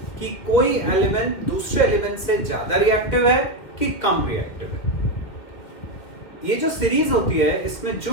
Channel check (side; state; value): right; late; 2.4 ms